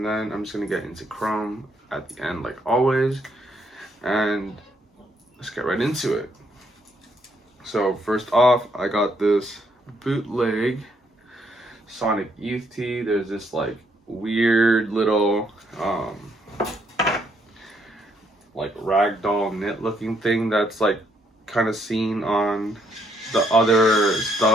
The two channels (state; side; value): normal; both; correlation 0.72